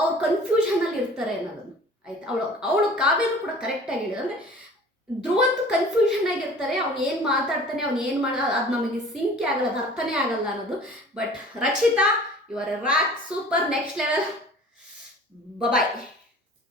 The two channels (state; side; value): normal; both; correlation 0.46